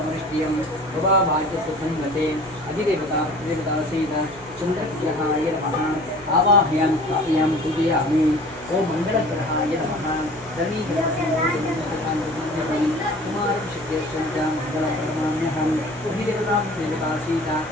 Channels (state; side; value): noise; left; hum, 24 dB below the sound